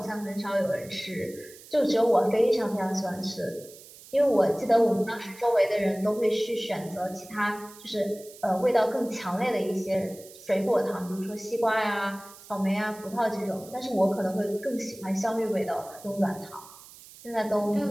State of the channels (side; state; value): right; noise; hiss, 20 dB below the sound